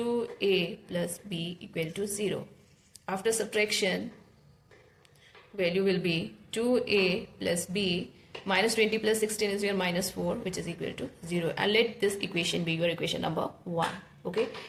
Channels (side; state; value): both; identical; correlation 1.00